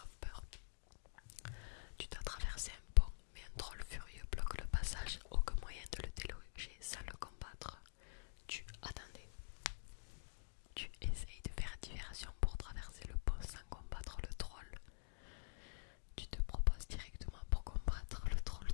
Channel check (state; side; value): silent; right; digital silence